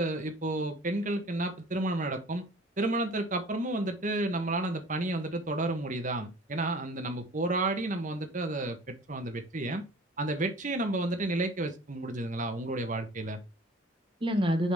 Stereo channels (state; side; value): normal; both; correlation 0.47